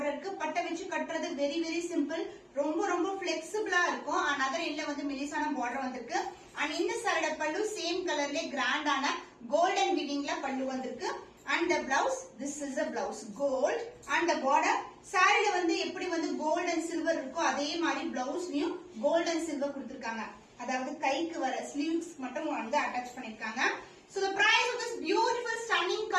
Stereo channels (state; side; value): identical; both; correlation 1.00